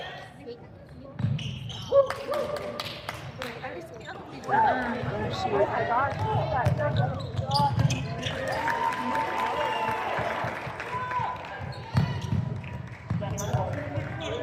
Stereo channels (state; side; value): identical; both; correlation 1.00